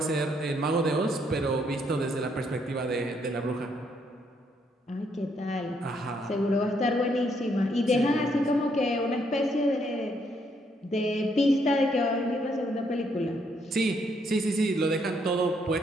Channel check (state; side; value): normal; both; correlation 0.72